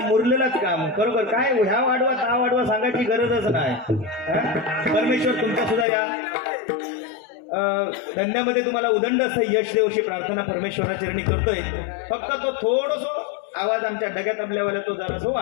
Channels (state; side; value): drops out; right; at 5.9 s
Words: मुरलेलंच काम. बरोबर काय ह्या वाढवा त्या वाढवा सांगायची गरजच नाही. परमेश्वर तुमचा सुद्धा या धंद्यामध्ये तुम्हाला उदंड असं यश देव अशी प्रार्थना परमेश्वराचरणी करतोय. फक्त तो थोडस आवाज आमच्या डग्यात आपल्यावाला तो जरा